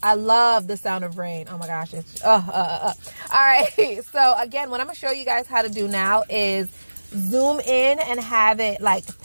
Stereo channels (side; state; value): both; inverted; correlation -1.00